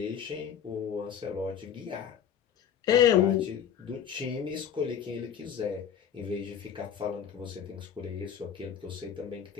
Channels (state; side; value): quieter; right; 8.7 dB